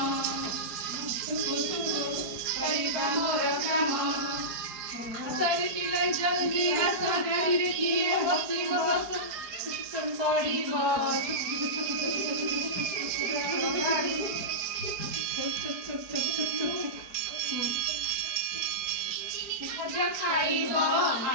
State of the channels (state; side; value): late; left; 4.6 ms